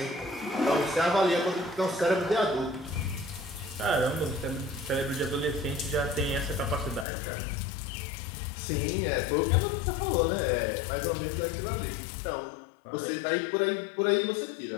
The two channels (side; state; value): right; drops out; at 7.1 s